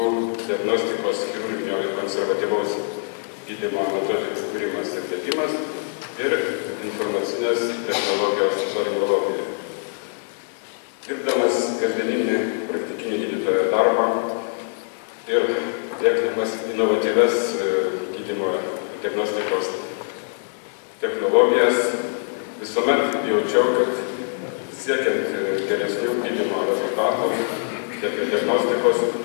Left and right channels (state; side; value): silent; right; 63 dB below the other